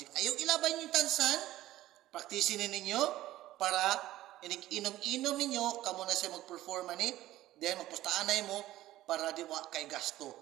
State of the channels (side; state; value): left; quieter; 15.1 dB